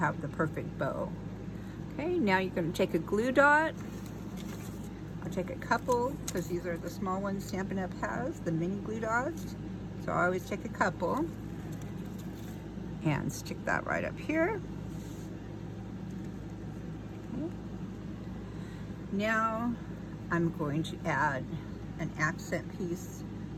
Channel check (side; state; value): both; identical; correlation 1.00